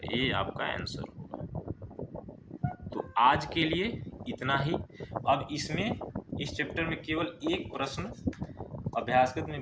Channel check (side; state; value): both; identical; correlation 1.00